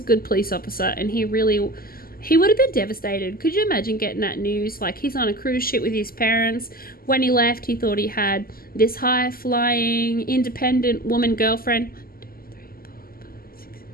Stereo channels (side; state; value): right; late; 0.42 ms